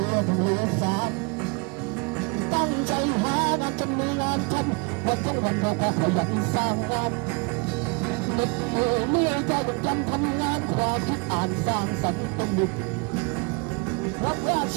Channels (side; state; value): left; quieter; 31.4 dB